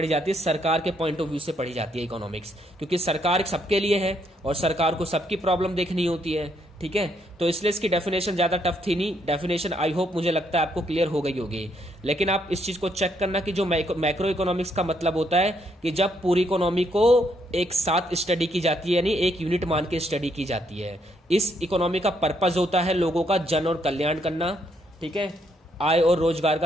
जाती है, सरकार के पॉइंट ऑफ व्यू से पढ़ी जाती है इकोनॉमिक्स, क्योंकि सरकार सबके लिए है और सरकार को सबकी प्रॉब्लम देखनी होती है, ठीक है। तो इसलिए इसकी डेफिनेशन ज्यादा टफ थी नहीं, डेफिनेशन आई होप मुझे लगता है आपको क्लियर हो गई होगी। लेकिन आप इस चीज को चेक करना कि जो मैक्रो इकोनॉमिक्स का मतलब होता है कि जब पूरी इकोनॉमी को एक साथ स्टडी की जाती है, यानी एक यूनिट मान के स्टडी की जाती है। इस इकोनॉमी का पर्पज होता है लोगों का जन और कल्याण करना, ठीक है, आय और रोजगार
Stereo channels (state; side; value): normal; both; correlation 0.73